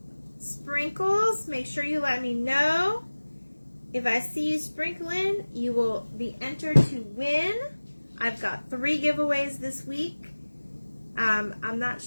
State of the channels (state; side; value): inverted; both; correlation -1.00